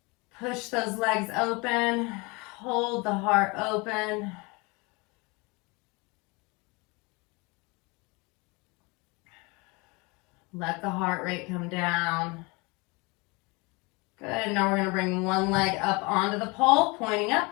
Push those legs open. Hold the heart open. Let the heart rate come down. Good. Now we're going to bring one leg up onto the pole, pointing up.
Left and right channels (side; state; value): right; quieter; 27.4 dB